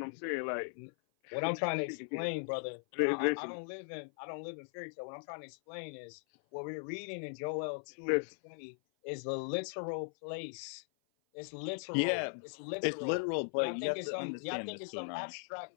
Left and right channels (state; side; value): silent; right; 52 dB below the other